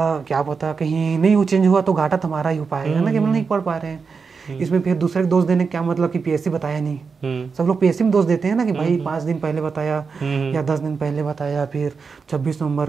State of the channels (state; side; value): quieter; left; 5.2 dB